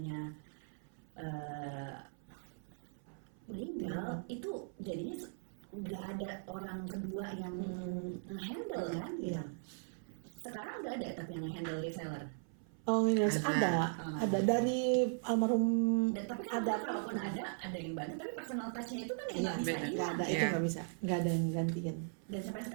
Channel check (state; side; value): silent; left; 52 dB below the other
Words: meninggal, itu jadinya nggak ada orang kedua yang nge-handle kan gitu. Sekarang nggak ada tapi yang nge-handle reseller. Oh, Indonesia ada dari almarhum Dan tapi kan ada kalaupun ada yang bantu, tapi personal touch-nya itu kan yang Iya, nggak bisa beda. nggak ada, itu Iya. nggak bisa, nggak ada yang gantiin Dan sampai